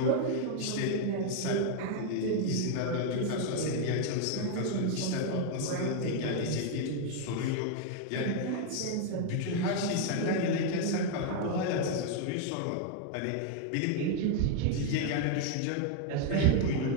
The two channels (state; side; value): different; both; correlation 0.00